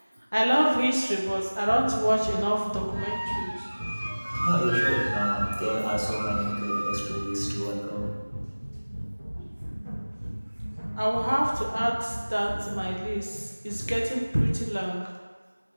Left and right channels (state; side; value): inverted; both; correlation -1.00